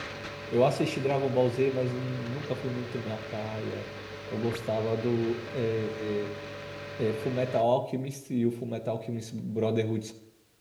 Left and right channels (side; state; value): both; identical; correlation 1.00